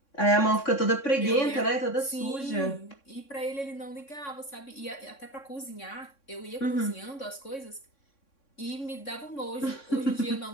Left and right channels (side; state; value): right; late; 3.6 ms